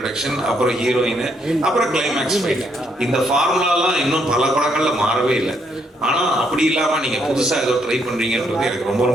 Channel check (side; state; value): both; normal; correlation 0.73